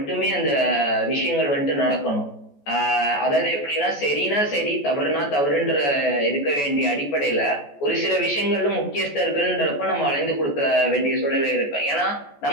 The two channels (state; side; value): late; right; 14 ms